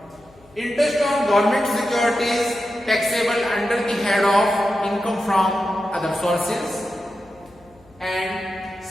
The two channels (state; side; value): noise; left; hum, 29 dB below the sound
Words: Interest on government securities taxable under the head of income from other sources, and